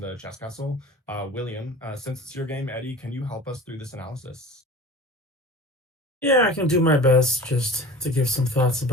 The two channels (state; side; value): normal; both; correlation 0.38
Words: chess castle, William. Since it's your game, Eddie, can you help us through this analysis? Yeah, I can do my best just to give some thoughts